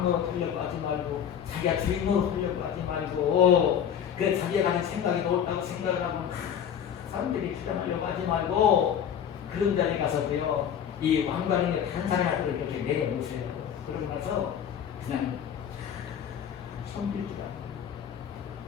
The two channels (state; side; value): quieter; right; 8.7 dB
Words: 하려고 하지 말고 자기가 주인노릇 하려고 하지 말고 그 자기가 가진 생각이 옳다고 생각을 하면 사람들이 주장하려고 하지 말고 그런 자리에 가서도요, 이 왕관을 다른 사람한테 이렇게 내려놓으세요. 그러고 나서 그냥 섬길